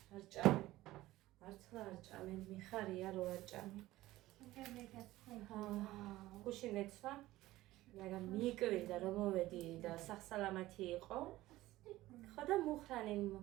მართლა არ ჭამენ, მიხარია რო არ ჭამენ. გუში მეცვა. მაგრამ მიკვირდა რომ მოვედი და სახსალამათი იყო. ხო და მუხრანი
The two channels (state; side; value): quieter; left; 16.8 dB